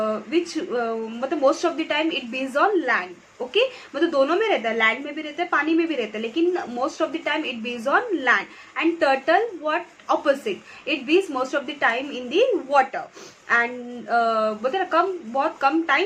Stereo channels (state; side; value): identical; both; correlation 1.00